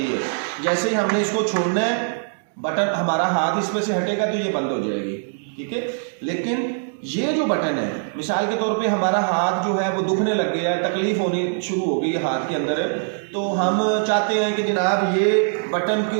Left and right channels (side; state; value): left; silent; digital silence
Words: है। जैसे ही हमने इसको छोड़ना है, बटन हमारा हाथ इसमें से हटेगा तो ये बंद हो जाएगी, ठीक है। लेकिन ये जो बटन है, मिसाल के तौर पे हमारा हाथ जो है वो दुखने लग गया, तकलीफ होनी शुरू हो गई हाथ के अंदर, तो हम चाहते हैं कि जनाब ये बटन के